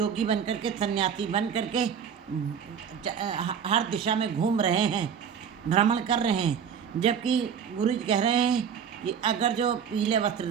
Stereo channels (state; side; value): quieter; left; 7.5 dB